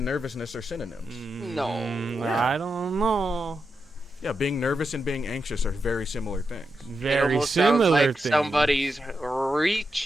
nervousness are synonyms. No. I don't know. Yeah, being nervous and being anxious are very similar things. It Very almost sounds similar like thing. somebody's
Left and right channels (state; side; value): normal; both; correlation 0.87